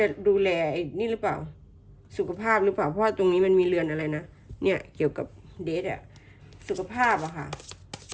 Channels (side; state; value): both; identical; correlation 1.00